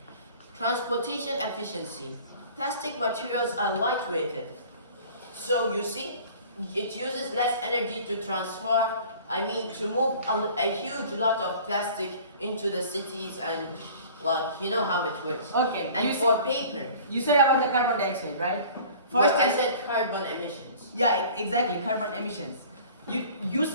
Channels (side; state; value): both; inverted; correlation -0.46